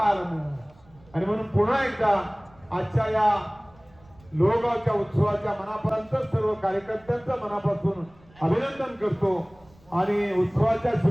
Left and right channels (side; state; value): right; noise; rumble, 28 dB below the sound